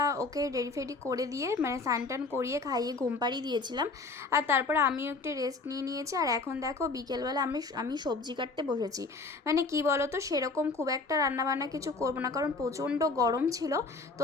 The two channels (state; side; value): quieter; right; 3.8 dB